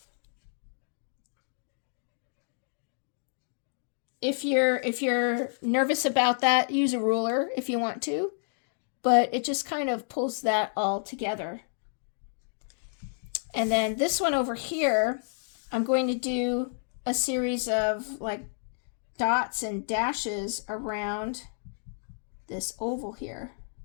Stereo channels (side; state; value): right; silent; digital silence